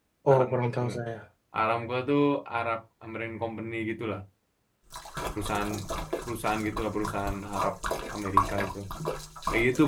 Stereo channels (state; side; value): identical; both; correlation 1.00